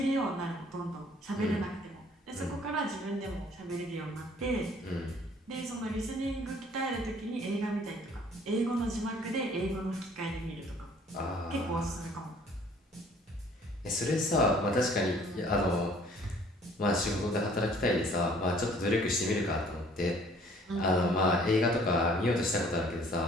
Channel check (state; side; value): normal; both; correlation 0.56